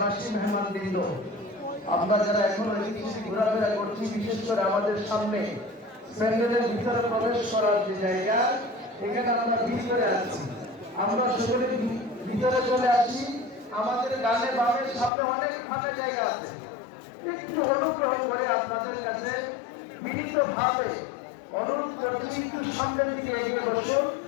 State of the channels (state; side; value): drops out; right; at 15.1 s